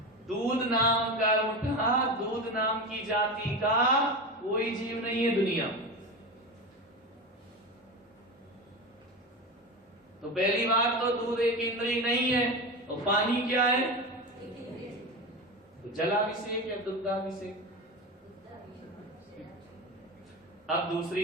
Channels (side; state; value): both; normal; correlation 0.23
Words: दूध नाम कर्म का, दूध नाम की जाति का कोई जीव नहीं है दुनिया। तो पहली बात तो दूध एक इंद्रिय नहीं है। और पानी क्या है? तो जलाभिषेक या दुग्धाभिषेक? अब